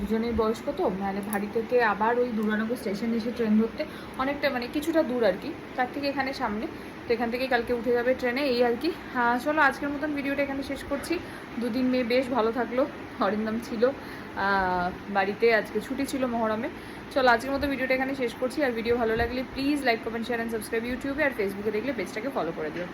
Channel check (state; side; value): identical; both; correlation 1.00